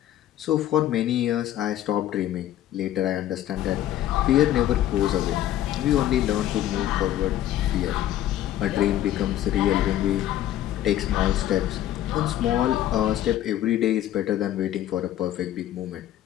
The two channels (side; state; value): right; quieter; 12.5 dB